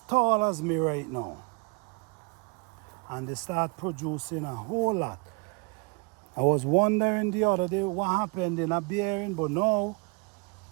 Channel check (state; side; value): quieter; left; 32.4 dB